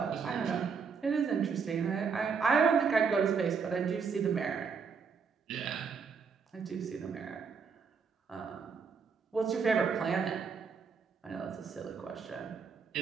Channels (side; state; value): left; quieter; 5.8 dB